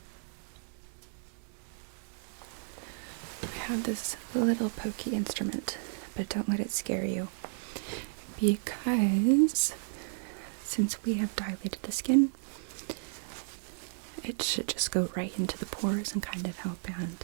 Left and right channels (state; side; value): silent; left; digital silence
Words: I have this little pokey instrument, but don't let it scare you, because since we have dilated the skin, it should just go right into the pores and kind of help